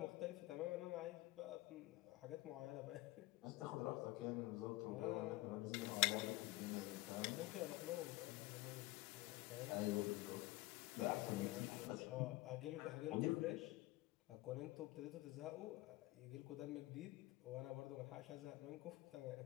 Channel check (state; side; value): quieter; right; 19.2 dB